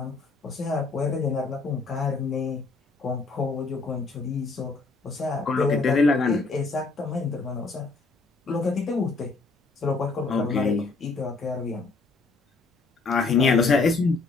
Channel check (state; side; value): quieter; right; 4.0 dB